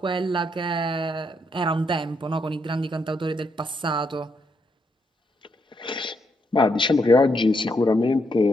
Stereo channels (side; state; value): both; normal; correlation 0.77